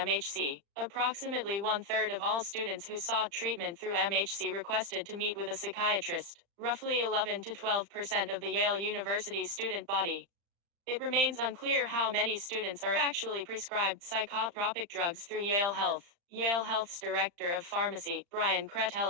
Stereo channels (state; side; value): late; left; 35 ms